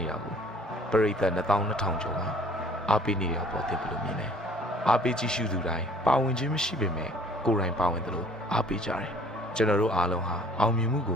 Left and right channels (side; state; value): both; normal; correlation 0.55